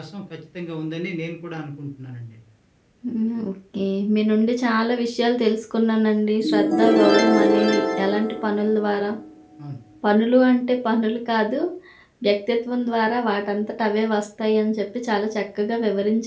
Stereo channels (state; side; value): identical; both; correlation 1.00